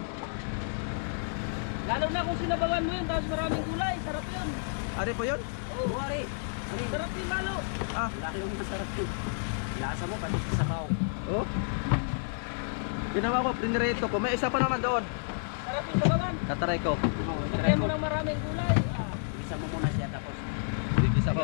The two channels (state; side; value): silent; right; digital silence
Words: Lalo na kung sinabawan mo yun, tapos maraming gulay. Sarap yun. Ari po yun? Oo, wari. Sarap yun lalo. Laki yung masarap yun. Lasa mo, pati sa sabaw. Oh. Ginawa ko, pinirito ko. May isa pa naman doon. Sarap yung sabawan. Tatry ko. Lagyan mo ng maraming gulay. Isa mo muna siya tapos Isa